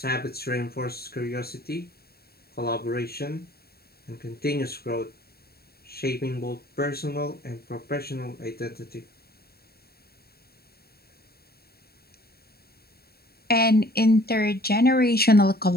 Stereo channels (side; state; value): right; late; 0.45 ms